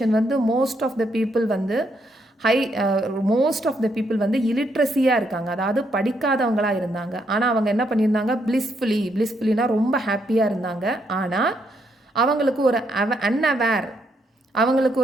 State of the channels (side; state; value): both; normal; correlation 0.76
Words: வந்து மோஸ்ட் ஆஃப் த பீப்புள் வந்து இலிட்ரஸியாக இருக்காங்க, அதாவது படிக்காதவங்களாக இருந்தாங்க. ஆனால் அவங்க என்ன பண்ணியிருந்தாங்க, பிளிஸ்ஃபுல்லினா ரொம்ப ஹாப்பியாக இருந்தாங்க. ஆனால் அவங்களுக்கு ஒரு அன்அவேர், அவங்களுக்கு